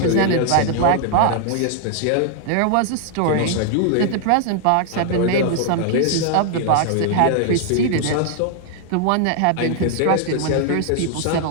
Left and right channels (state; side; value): different; both; correlation 0.00